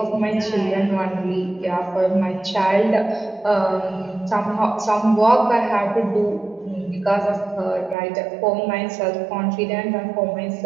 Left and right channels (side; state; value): left; drops out; at 8.0 s